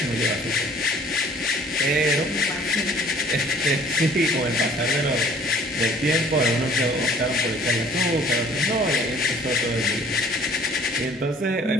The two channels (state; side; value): normal; both; correlation 0.54